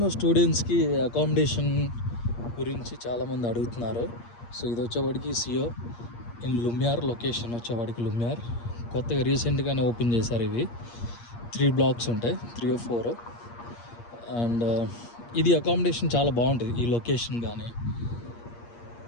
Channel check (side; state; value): right; late; 8.5 ms